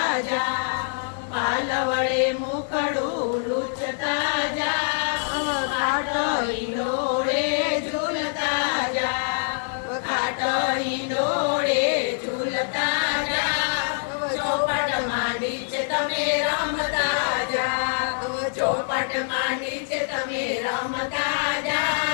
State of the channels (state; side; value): silent; right; digital silence